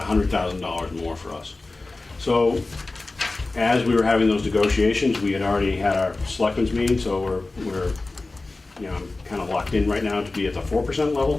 $100,000 more for us. So as we were having those negotiations, we had already had our selectmen's meeting, so we're kind of locked in right now to be at the 4%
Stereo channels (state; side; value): quieter; right; 3.3 dB